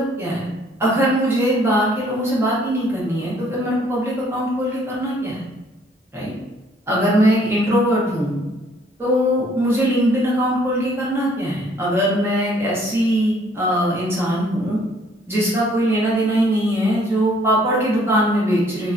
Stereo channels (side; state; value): both; normal; correlation 0.61